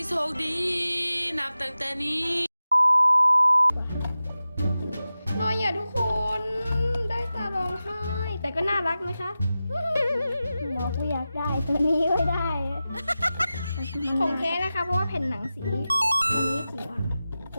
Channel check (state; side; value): inverted; both; correlation -0.94